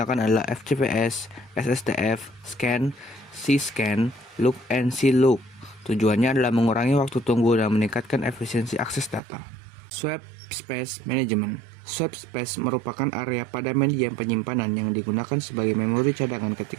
adalah FCPS, SSTF, Scan, C-Scan, Look, and C-Look. Tujuannya adalah mengurangi waktu tunggu dan meningkatkan efisiensi akses data. Swap Space Management. Swap space merupakan area pada medium penyimpanan yang digunakan sebagai memori cadangan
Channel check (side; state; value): left; drops out; at 9.2 s